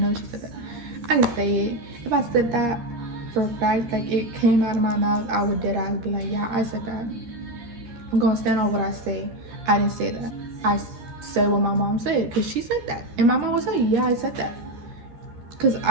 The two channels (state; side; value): late; left; 13 ms